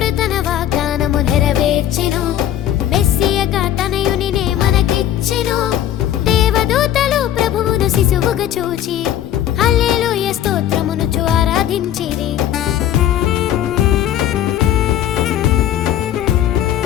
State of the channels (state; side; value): quieter; right; 11.5 dB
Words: తన వాగ్దానము నెరవేర్చెను మెస్సియగా తనయునినే మనకిచ్చెను దేవదూతలు ప్రభువును శిశువుగా చూచి హల్లెలూయా స్తోత్రమునుచు ఆరాధించిరి